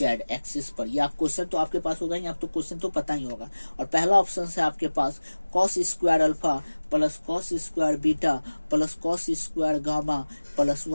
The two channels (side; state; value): both; inverted; correlation -1.00